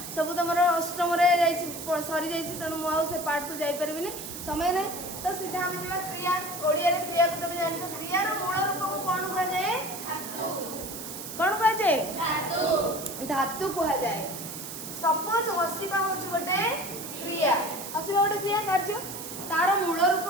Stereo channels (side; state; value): right; noise; hiss, 9 dB below the sound